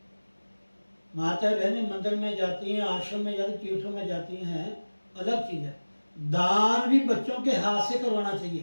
माता बहनें मंदिर में जाती हैं, आश्रम में जाती, तीर्थों में जाती हैं, अलग चीज है। दान भी बच्चों के हाथ से करवाना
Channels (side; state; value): both; inverted; correlation -1.00